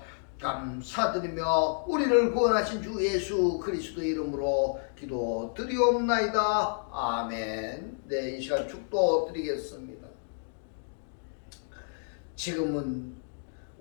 감사드리며 우리를 구원하신 주 예수 그리스도 이름으로 기도드리옵나이다. 아멘. 네, 이 시간 축도 드리겠습니다. 지금은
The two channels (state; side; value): silent; right; digital silence